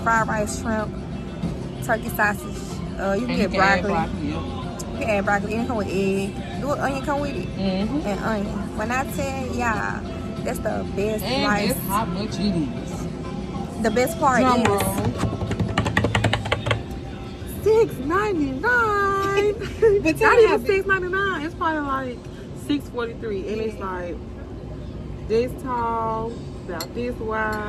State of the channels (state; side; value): identical; both; correlation 1.00